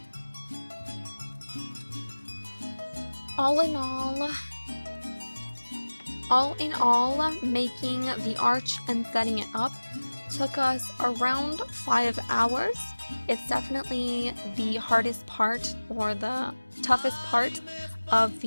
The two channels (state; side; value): inverted; both; correlation -1.00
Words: All in all, making the arch and setting it up took us around 5 hours. It's definitely the hardest part or the toughest part of